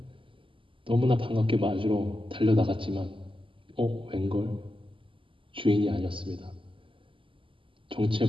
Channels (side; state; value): left; late; 0.25 ms